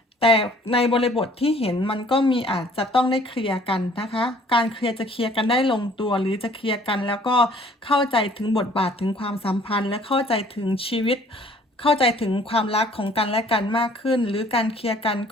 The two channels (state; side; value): normal; both; correlation 0.56